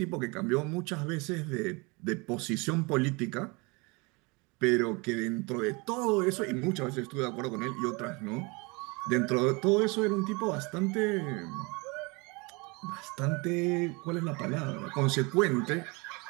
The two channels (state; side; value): quieter; left; 28.0 dB